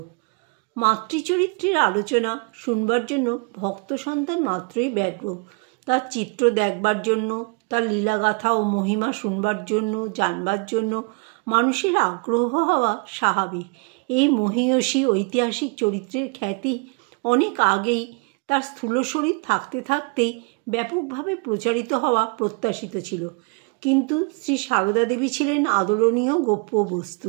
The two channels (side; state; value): left; quieter; 32.5 dB